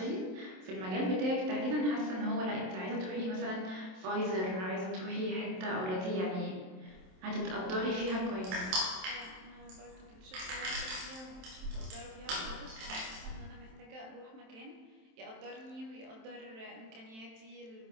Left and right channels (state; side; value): late; left; 27 ms